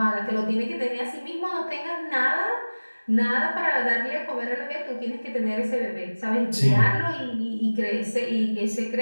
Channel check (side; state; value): both; inverted; correlation -1.00